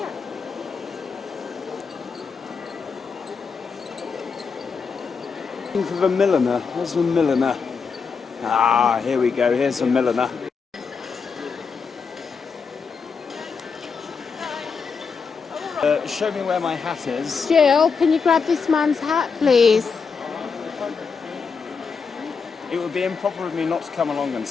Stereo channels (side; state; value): right; quieter; 5.5 dB